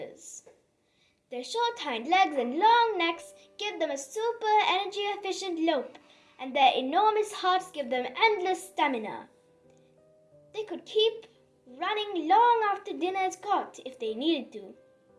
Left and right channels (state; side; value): identical; both; correlation 1.00